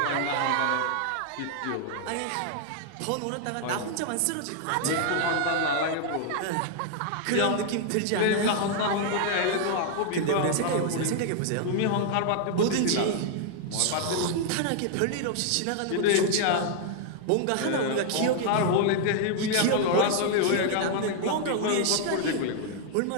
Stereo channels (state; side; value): different; both; correlation 0.00